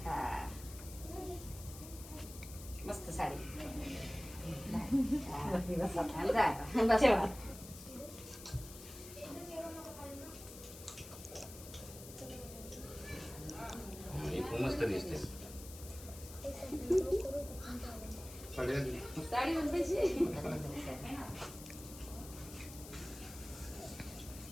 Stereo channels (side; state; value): left; noise; hiss, 14 dB below the sound